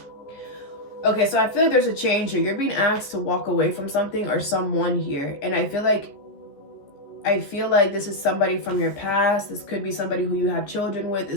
okay, so I feel like there's a change here. You're being asked to walk away from something or someone here, and I feel like this is somebody from your past. This could be somebody who you have children with.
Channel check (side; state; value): right; late; 14 ms